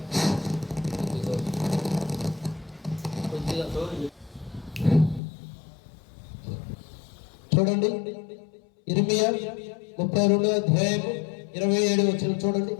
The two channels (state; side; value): drops out; right; at 5.2 s